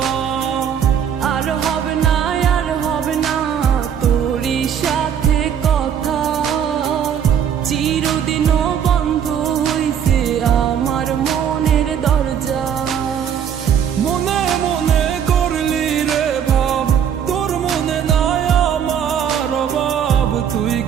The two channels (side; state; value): left; quieter; 8.4 dB